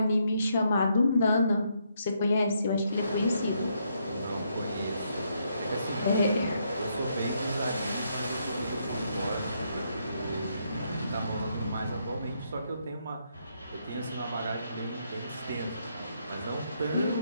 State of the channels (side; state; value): both; inverted; correlation -0.76